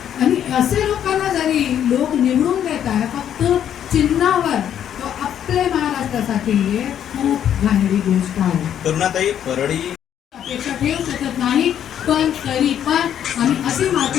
आणि असे लोकांना जरी लोक निवडून देत आहे फक्त चिन्हावर, तो आपल्या महाराष्ट्रासाठी खूप घाणेरी गोष्ट आहे. करुणाताई परळी अपेक्षा ठेवू शकत नाही, पण तरी पण आम्ही असे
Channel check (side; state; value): right; quieter; 9.8 dB